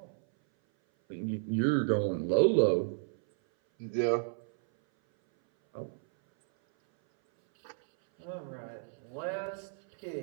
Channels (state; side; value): silent; left; 56 dB below the other